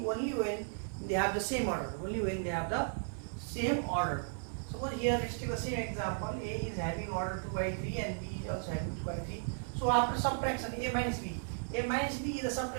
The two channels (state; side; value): silent; left; 54 dB below the other